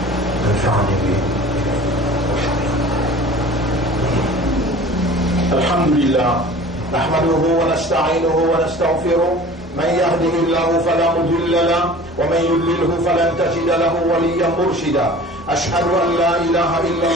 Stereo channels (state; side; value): normal; both; correlation 0.42